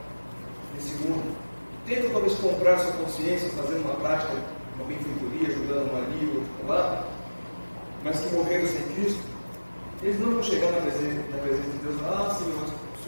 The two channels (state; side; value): inverted; both; correlation -1.00